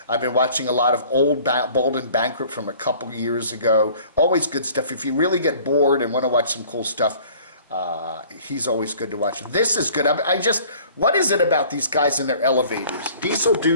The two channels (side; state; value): both; inverted; correlation -0.51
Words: I've been watching a lot of old Bold and Bankrupt from a couple years ago. Always good stuff. If you really get bored and want to watch some cool stuff, he's always good to watch. This is good. What is it about these guys in their elevators? Diesel